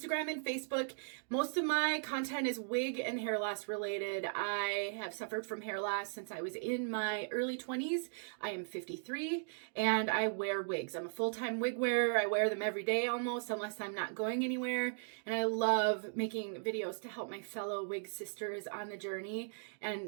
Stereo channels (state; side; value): silent; left; digital silence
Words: and Facebook. Most of my content is wig and hair loss related. I have suffered from hair loss since I was in my early 20s. I am 53 and I wear wigs. I'm a full-time wig wearer. I wear them every day almost, unless I'm not going anywhere. And I love making videos to help my fellow wig sisters on the journey.